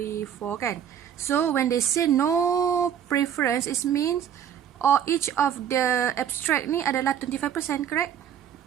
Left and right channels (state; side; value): quieter; left; 9.3 dB